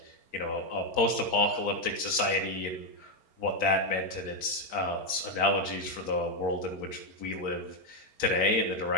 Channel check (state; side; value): late; right; 4.4 ms